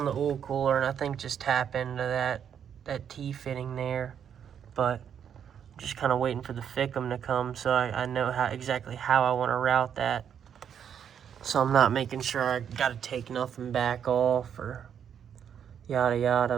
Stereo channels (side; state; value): left; quieter; 8.4 dB